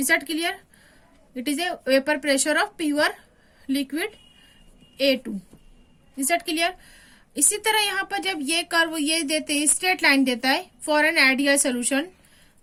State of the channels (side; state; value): both; identical; correlation 1.00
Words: that clear? It is a vapour pressure of pure liquid A2. Is that clear? इसी तरह यहाँ पर जब ये curve ये देते हैं, straight line देता है फॉर एन आइडियल सोल्यूशन,